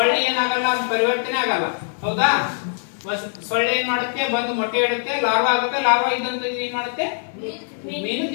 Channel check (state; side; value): silent; right; digital silence